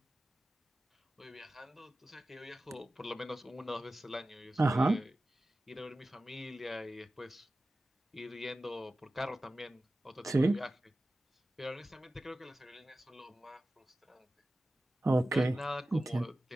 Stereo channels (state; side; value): normal; both; correlation 0.95